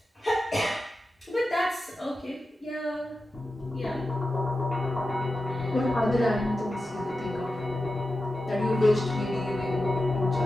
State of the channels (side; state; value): both; normal; correlation 0.92